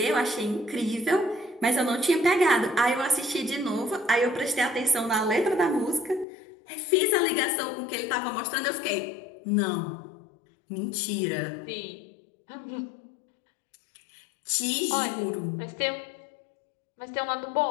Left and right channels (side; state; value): right; drops out; at 6.2 s